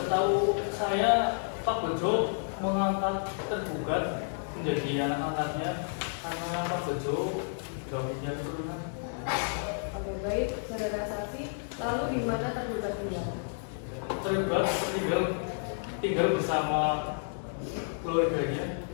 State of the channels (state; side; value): silent; right; digital silence